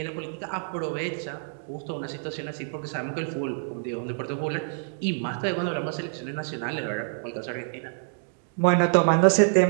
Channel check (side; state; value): left; silent; digital silence